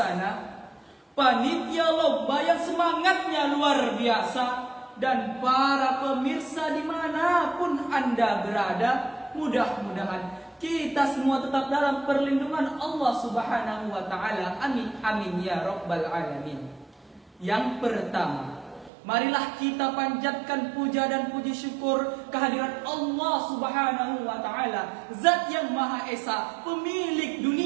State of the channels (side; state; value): left; drops out; at 18.9 s